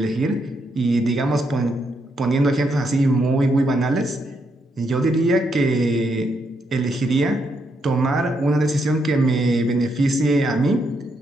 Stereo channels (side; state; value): both; normal; correlation 0.78